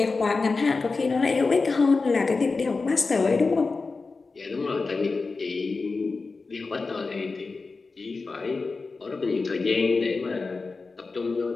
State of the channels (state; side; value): quieter; right; 4.1 dB